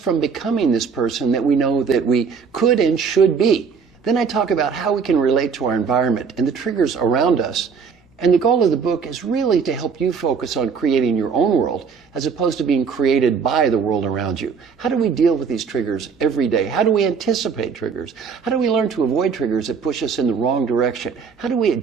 becoming this person that we know that we could and should be? Then I talk about how we can relate to our environment and the triggers around us. And the goal of the book is really to help you focus on creating your own world as opposed to being created by the world around you. How do we deal with these triggers every day? How do we anticipate triggers? How do we learn to avoid triggers that push us in the wrong direction? How do we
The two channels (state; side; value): quieter; left; 6.0 dB